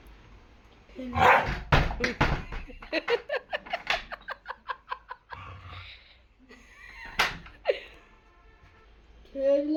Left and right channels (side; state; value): both; identical; correlation 1.00